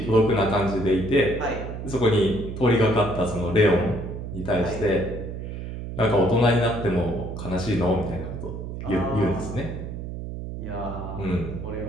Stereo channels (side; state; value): right; noise; hum, 7 dB below the sound